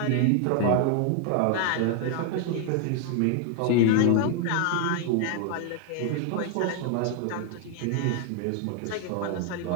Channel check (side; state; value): both; different; correlation 0.00